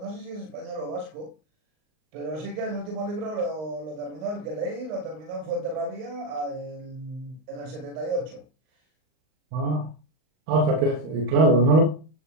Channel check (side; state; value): left; late; 39 ms